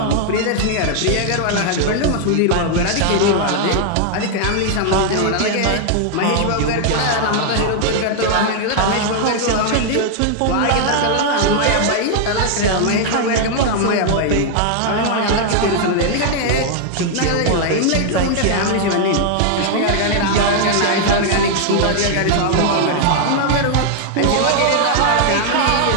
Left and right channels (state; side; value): different; both; correlation 0.00